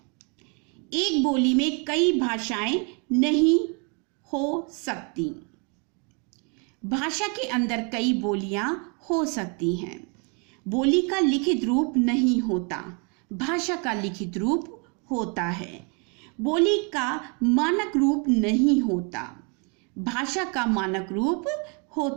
एक बोली में कई भाषाएं नहीं हो सकती। भाषा के अंदर कई बोलियां हो सकती हैं। बोली का लिखित रूप नहीं होता, भाषा का लिखित रूप होता है। बोली का मानक रूप नहीं होता, भाषा का मानक रूप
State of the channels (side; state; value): left; quieter; 35.2 dB